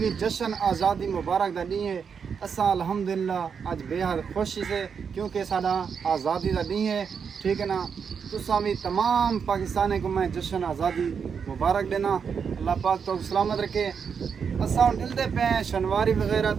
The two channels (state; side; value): quieter; left; 6.5 dB